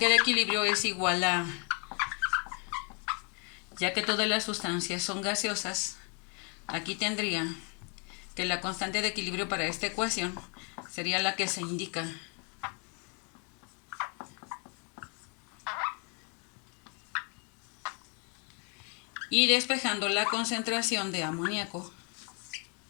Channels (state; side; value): quieter; right; 36.8 dB